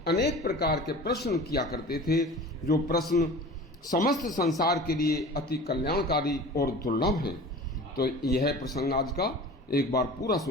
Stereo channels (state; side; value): normal; both; correlation 0.39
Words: अनेक प्रकार के प्रश्न किया करते थे, जो प्रश्न समस्त संसार के लिए अति कल्याणकारी और दुर्लभ हैं। तो यह प्रसंग आज का एक बार पूरा